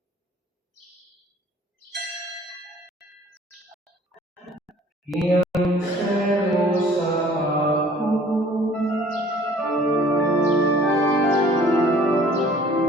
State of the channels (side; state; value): both; normal; correlation 0.52